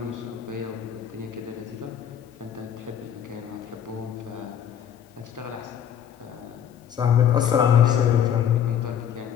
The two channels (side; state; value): right; quieter; 9.1 dB